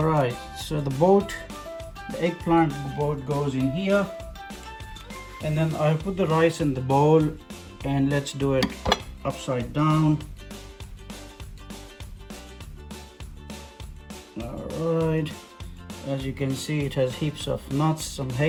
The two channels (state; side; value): identical; both; correlation 1.00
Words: right, so the eggplant boat goes in here. And then I put the rice in the bowl and let's do it upside down. All right, as you can see, it has heaps of nuts, some